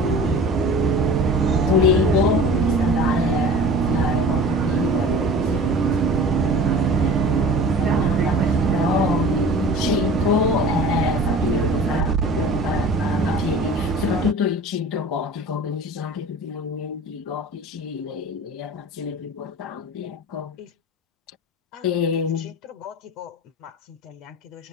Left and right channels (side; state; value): both; normal; correlation 0.40